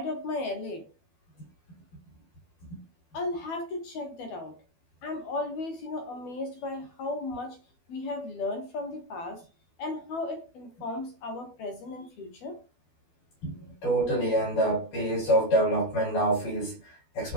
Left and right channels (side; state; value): right; late; 12 ms